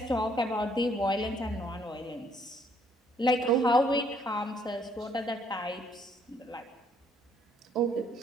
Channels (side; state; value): both; normal; correlation 0.66